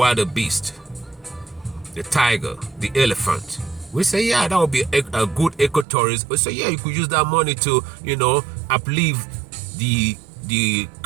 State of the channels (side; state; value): left; drops out; at 5.9 s